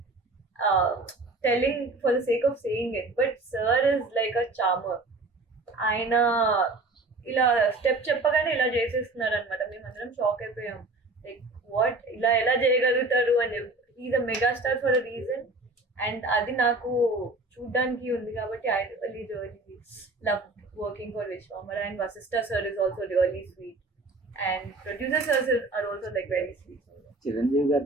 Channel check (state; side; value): quieter; left; 3.2 dB